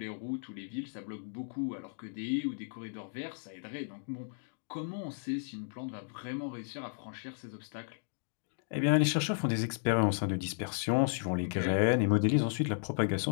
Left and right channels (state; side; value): silent; right; digital silence